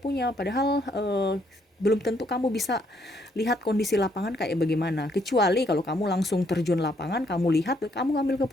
padahal belum tentu kamu bisa lihat kondisi lapangan kayak bagaimana, kecuali kalau kamu langsung terjun lapangan, kamu lihat, kamu ngambil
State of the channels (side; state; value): both; normal; correlation 0.70